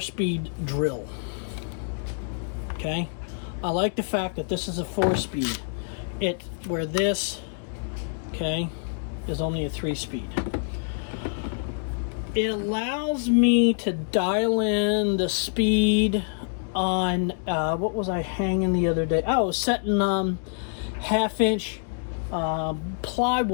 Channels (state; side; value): silent; right; digital silence